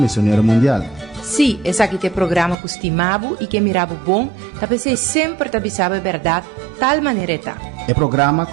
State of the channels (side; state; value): left; drops out; at 2.6 s